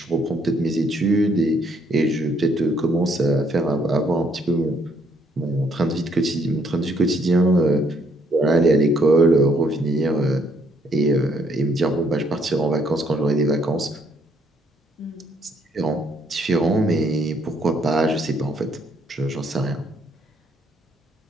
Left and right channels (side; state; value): both; normal; correlation 0.69